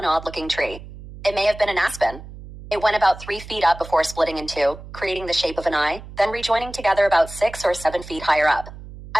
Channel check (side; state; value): right; noise; hum, 15 dB below the sound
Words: odd-looking tree. It may have been an aspen. It went about 3 feet up before splitting in two, creating the shape of an eye, then rejoining together about 6 or 7 feet higher up.